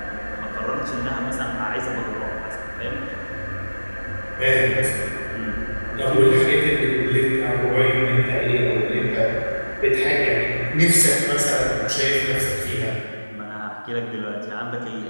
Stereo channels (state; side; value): inverted; both; correlation -1.00